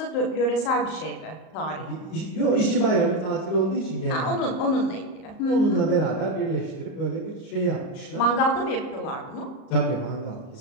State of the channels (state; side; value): late; right; 38 ms